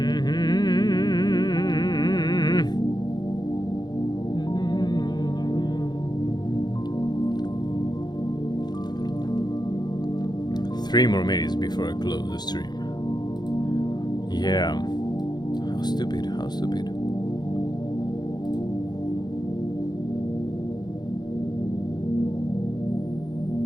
Three more minutes before I close the stream. Yeah. How stupid, how stupid.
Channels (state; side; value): late; right; 0.20 ms